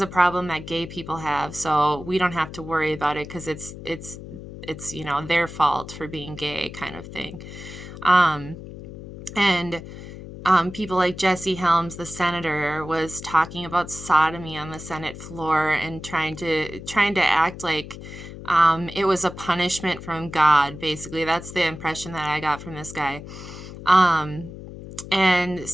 a problem that gay people have, so we don't have to worry about it because it's their fault for being gay, kind of thing. And people like Jesse Helms, the senator, was talking about sodomy on the Senate floor and trying to act like it was a punishment from God. Basically, that's the impression that I got from this guy. And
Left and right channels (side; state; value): left; noise; hum, 13 dB below the sound